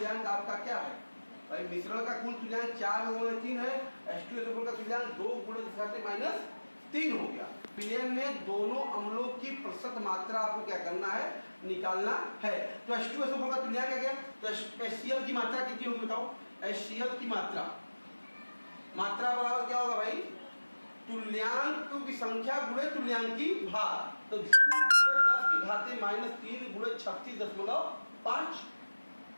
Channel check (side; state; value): both; inverted; correlation -1.00